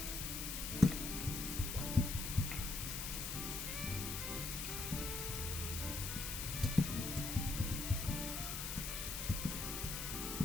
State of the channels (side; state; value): left; noise; hiss, 3 dB below the sound